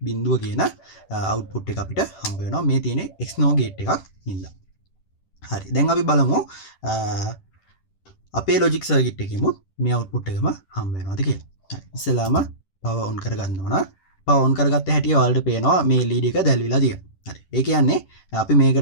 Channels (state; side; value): late; right; 10 ms